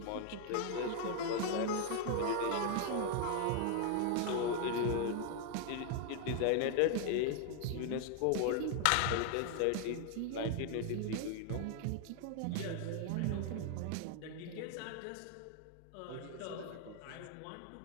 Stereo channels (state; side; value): different; both; correlation 0.00